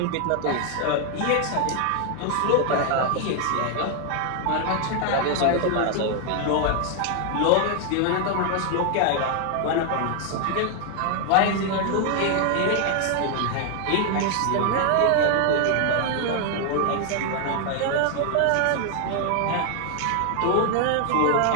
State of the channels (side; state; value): both; different; correlation 0.00